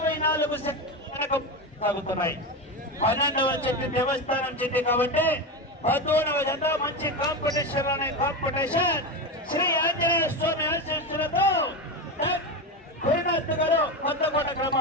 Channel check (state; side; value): normal; both; correlation 0.18